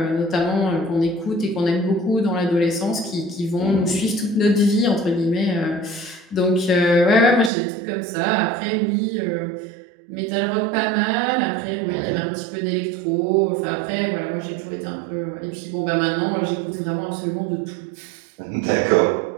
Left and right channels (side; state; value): left; drops out; at 7.5 s